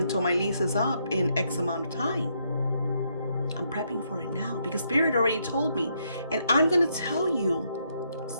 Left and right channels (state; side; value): inverted; both; correlation -0.75